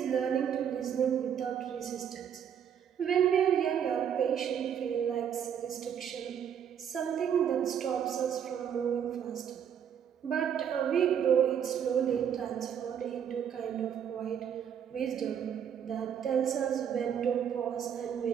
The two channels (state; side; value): quieter; left; 8.6 dB